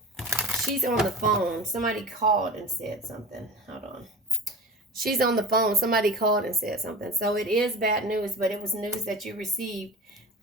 she's on the phone. Somebody called and said something. Hold on. She's on the phone. Somebody called and said something. So it is bad news, but it was news that you received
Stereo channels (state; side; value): normal; both; correlation 0.33